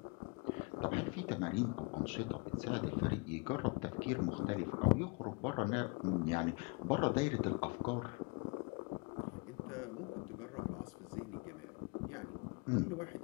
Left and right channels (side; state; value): right; quieter; 31.4 dB